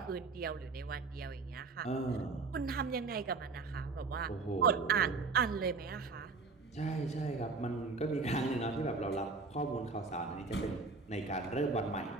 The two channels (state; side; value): quieter; left; 4.2 dB